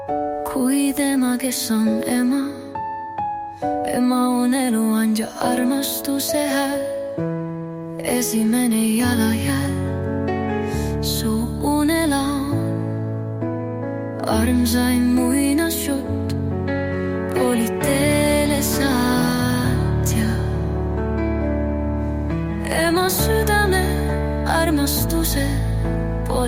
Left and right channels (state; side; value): identical; both; correlation 1.00